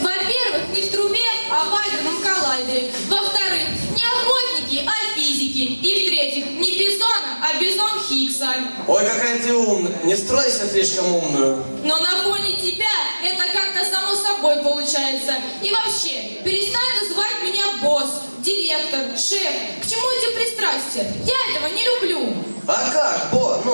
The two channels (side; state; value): both; inverted; correlation -1.00